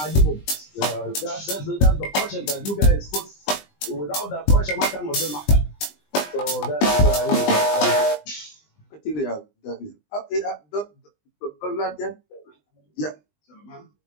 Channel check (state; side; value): late; right; 20 ms